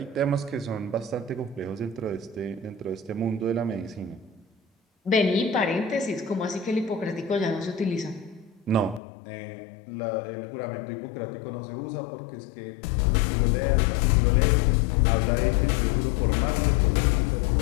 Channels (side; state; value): right; drops out; at 9.0 s